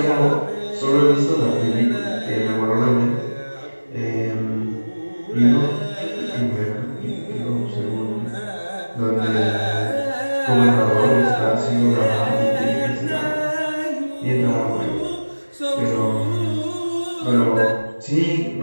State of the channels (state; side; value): inverted; both; correlation -1.00